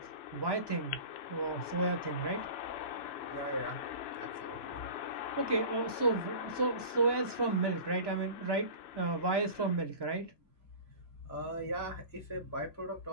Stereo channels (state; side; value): late; right; 3.0 ms